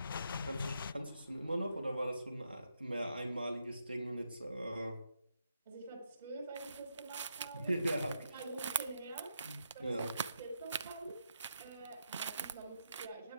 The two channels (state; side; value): inverted; both; correlation -0.80